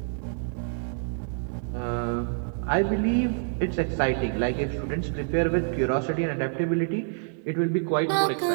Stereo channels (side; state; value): left; silent; 60 dB below the other